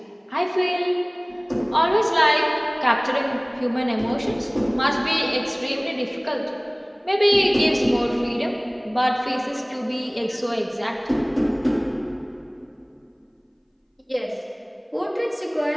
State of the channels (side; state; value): both; identical; correlation 1.00